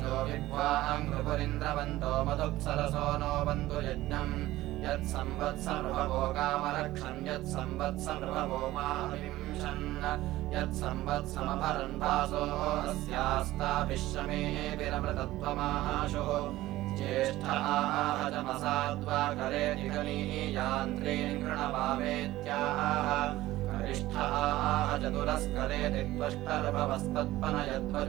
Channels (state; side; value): quieter; left; 16.4 dB